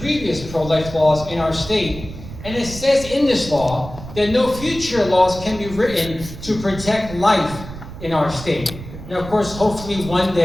previous pro-life laws in our state. And it says in this law that no future laws can be written to protect life in our state. Now, of course, hopefully one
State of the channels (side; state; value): right; noise; rumble, 12 dB below the sound